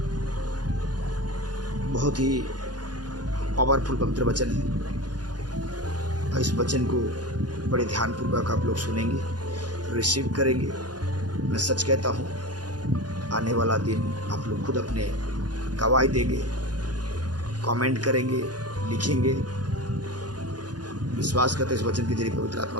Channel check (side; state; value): left; late; 0.69 ms